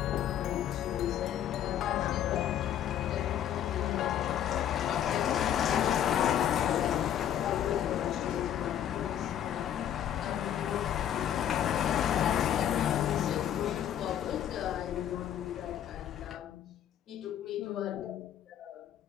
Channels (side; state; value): right; quieter; 10.4 dB